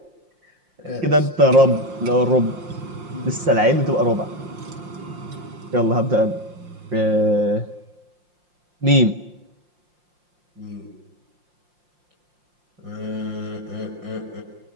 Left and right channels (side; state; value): left; late; 5.7 ms